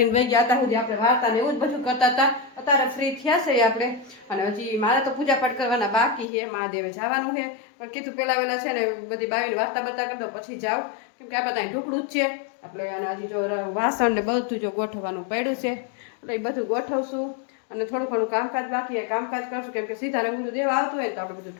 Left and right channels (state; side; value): drops out; right; at 6.2 s